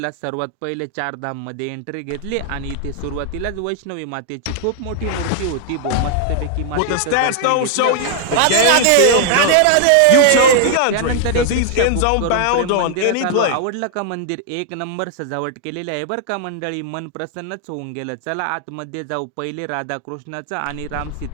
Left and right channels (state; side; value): different; both; correlation 0.00